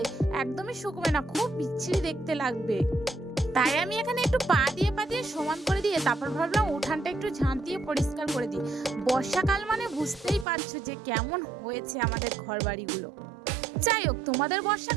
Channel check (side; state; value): left; drops out; at 10.5 s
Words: একদমই শুকবে না, খুব বিচ্ছিরি দেখতে লাগবে। তাই আমি এখানে একটু পা দিয়ে সমান করে দিয়ে তারপর ভাবলাম উঠানটা একটু ঝাঁট দিয়ে পরিষ্কার করে দিই। বর্ষাকাল মানে বুঝতেই পারছো যে কেমন হয়েছে আমাদের ঘর বাড়িগুলো। যাই হোক, তোমাদের